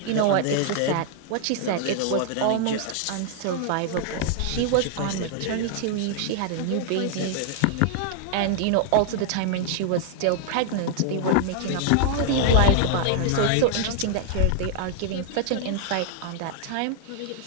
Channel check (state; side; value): different; both; correlation 0.00